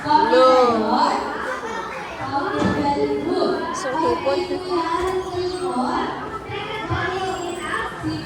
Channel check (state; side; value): identical; both; correlation 1.00